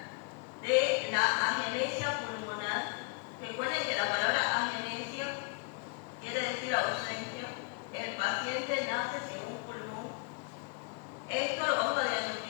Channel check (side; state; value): right; quieter; 31.9 dB